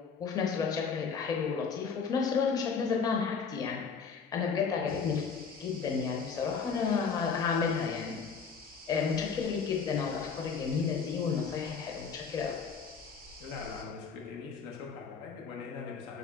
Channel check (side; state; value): right; quieter; 5.7 dB